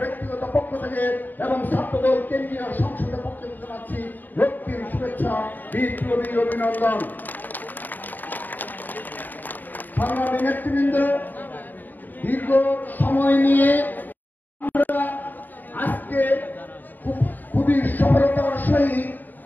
ব্যক্তিগত পক্ষ থেকে এবং ছাত্রদল কেন্দ্রীয় সংসদের পক্ষ থেকে জানাচ্ছি রক্তিম শুভেচ্ছা বিপ্লবী অভিনন্দন। সংগ্রামী নেতৃবৃন্দ, দীর্ঘ সময় নিয়ে আমরা আজকে খুবই সফলতার সহিত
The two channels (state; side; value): late; right; 0.087 ms